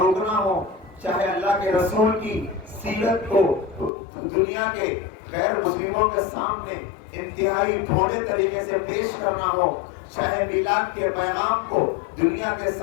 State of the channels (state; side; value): drops out; right; at 3.9 s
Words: روکنا ہو، چاہے اللہ کے رسول کی سیرت کو دنیا کے غیر مسلموں کے سامنے انتہائی بھوڑے طریقے سے پیش کرنا ہو، چاہے میلاد کے پیغام کو دنیا کے